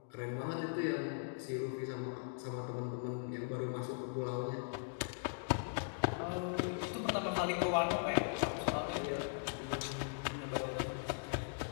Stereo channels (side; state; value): right; silent; digital silence